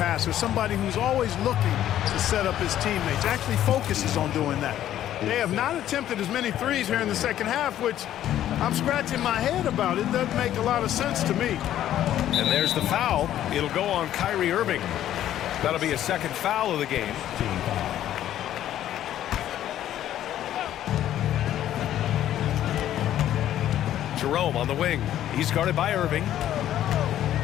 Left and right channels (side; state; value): right; quieter; 11.9 dB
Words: somebody who's always looking to set up his teammates, actually focuses on doing that. They have not attempted as many threes here in the second half, which I'm scratching my head about. It doesn't make a lot of sense to me. And there's the foul. It'll go on Kyrie Irving. That'll be a second foul of the game. Jerome on the wing. He's guarded by Irving.